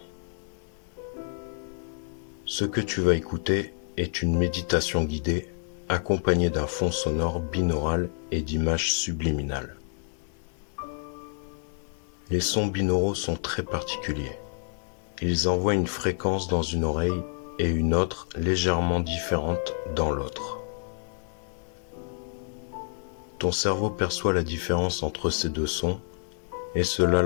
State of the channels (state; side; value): silent; right; 59 dB below the other